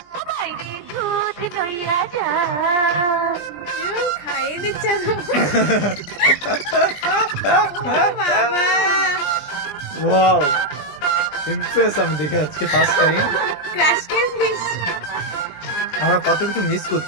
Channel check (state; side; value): late; right; 20 ms